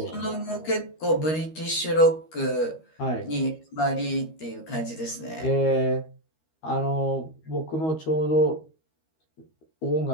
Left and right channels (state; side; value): late; right; 13 ms